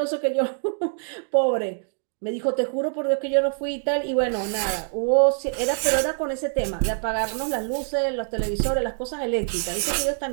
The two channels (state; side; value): silent; left; 60 dB below the other